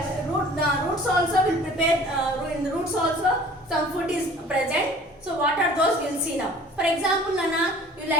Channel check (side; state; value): both; normal; correlation 0.48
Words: roots also will prepare. In the roots also some food is present. So what are those? We'll see now. For example, Nana, you